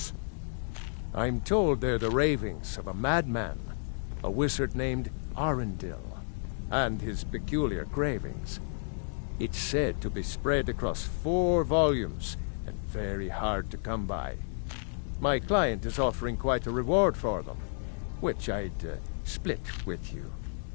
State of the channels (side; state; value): right; silent; digital silence